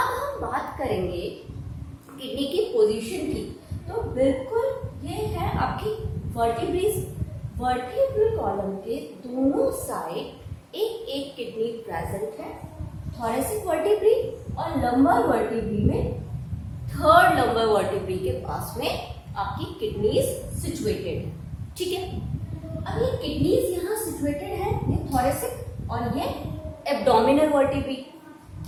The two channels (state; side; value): identical; both; correlation 1.00